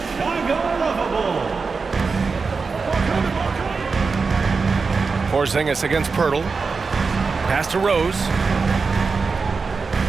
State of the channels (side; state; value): left; quieter; 4.7 dB